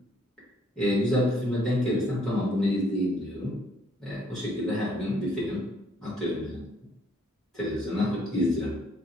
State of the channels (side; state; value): both; normal; correlation 0.66